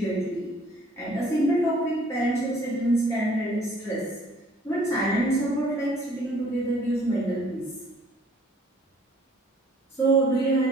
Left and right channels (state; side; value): normal; both; correlation 0.57